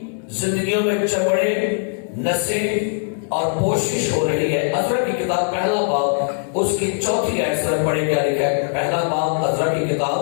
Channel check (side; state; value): right; silent; digital silence